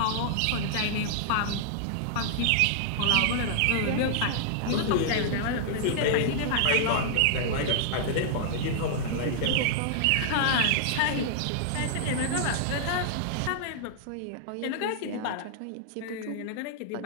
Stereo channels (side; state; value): both; different; correlation -0.01